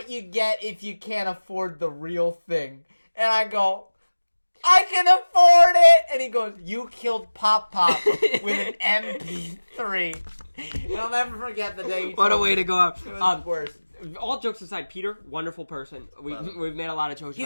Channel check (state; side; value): inverted; both; correlation -1.00